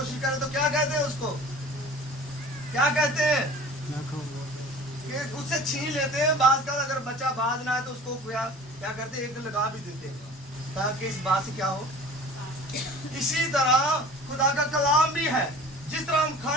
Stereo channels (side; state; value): both; normal; correlation 0.43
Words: करे तो क्या कहते हैं उसको? क्या कहते हैं? कि उससे छीन लेते हैं। बात का अगर बच्चा बाज ना है तो उसको क्या करते हैं? एक लगा भी देते हैं ताकि इस बात से क्या हो। इसी तरह खुदा का कलाम भी है। जिस तरह हम